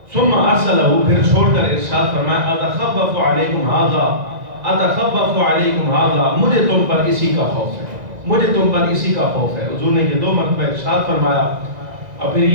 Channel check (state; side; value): late; left; 2.0 ms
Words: ثم ارسلہ، پھر چھوڑ کر ارشاد فرمایا، اتخفف علیکم ھذا، اتخفف علیکم ھذا، مجھے تم پر اسی کا خوف ہے، مجھے تم پر اسی کا خوف ہے۔ حضور نے یہ 2 مرتبہ ارشاد فرمایا، اور پھر